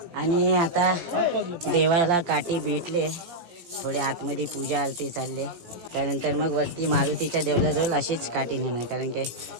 आणि आता देवाला काठी भेटले. थोडे आतमध्ये पूजा आरती चालले. त्यानंतर मग वरती मारुतीच्या देवळाजवळ अशीच काठी नेणार, कारण की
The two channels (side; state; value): left; late; 17 ms